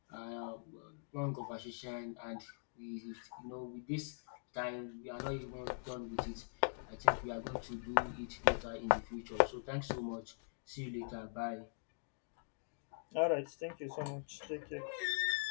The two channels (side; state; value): right; silent; digital silence